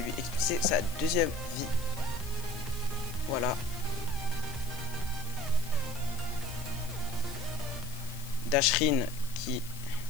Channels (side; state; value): left; noise; hiss, 17 dB below the sound